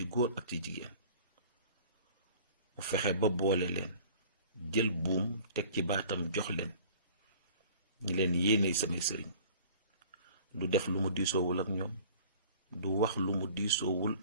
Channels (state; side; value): inverted; both; correlation -0.49